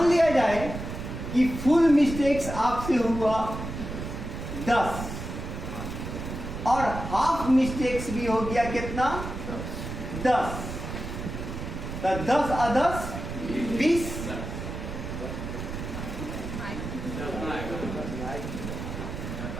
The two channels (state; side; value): noise; right; rumble, 7 dB below the sound